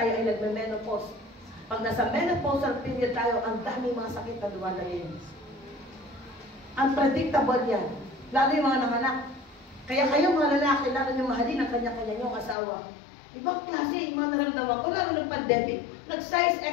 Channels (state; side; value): drops out; right; at 12.6 s